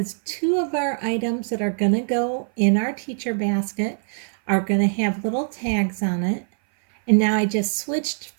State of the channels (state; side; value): silent; left; 59 dB below the other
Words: two of our items that are going to go in our teacher basket are going to have little tags on it. And now I just switched